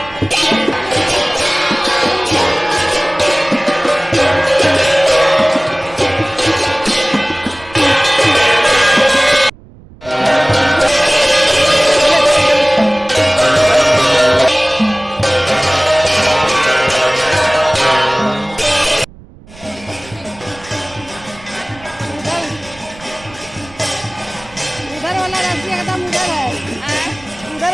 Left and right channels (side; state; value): right; noise; rumble, 22 dB below the sound